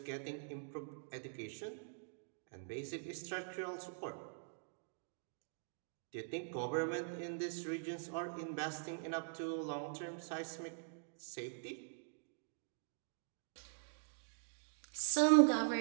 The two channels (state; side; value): silent; left; digital silence